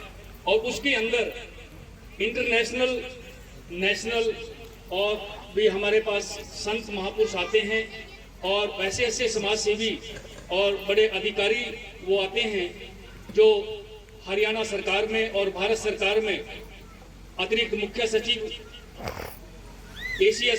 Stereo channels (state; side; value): identical; both; correlation 1.00